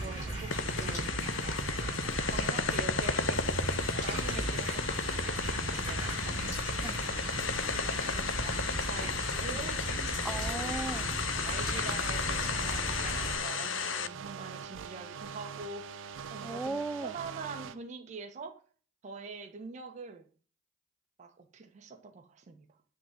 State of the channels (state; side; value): normal; both; correlation 0.17